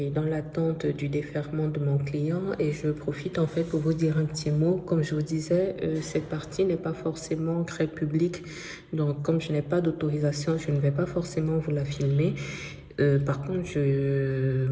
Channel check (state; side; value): identical; both; correlation 1.00